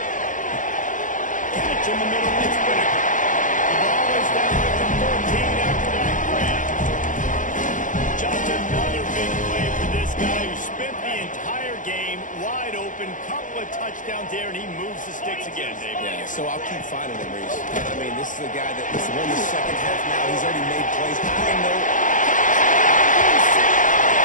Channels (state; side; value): late; right; 0.38 ms